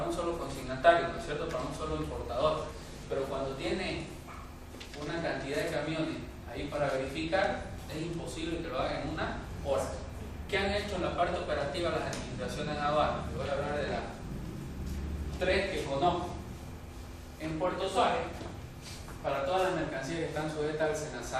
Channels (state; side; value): identical; both; correlation 1.00